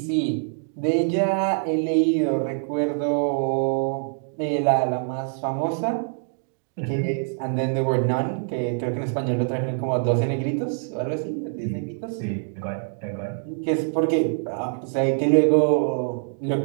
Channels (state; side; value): silent; left; digital silence